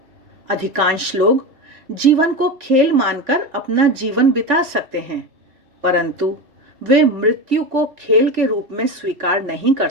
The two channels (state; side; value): late; left; 3.4 ms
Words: अधिकांश लोग जीवन को खेल मानकर अपना जीवन बिता सकते हैं, परंतु वे मृत्यु को खेल के रूप में स्वीकार नहीं कर